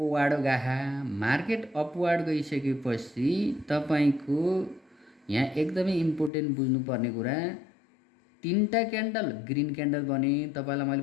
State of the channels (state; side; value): drops out; right; at 6.3 s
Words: गाहा। मार्केट अपवार्ड गइसकेपछि तपाईँको यहाँ एकदमै इम्पोर्टेन्ट बुझ्नुपर्ने कुरा, 3टा क्यान्डल ग्रिन क्यान्डल बने। तपाईँलाई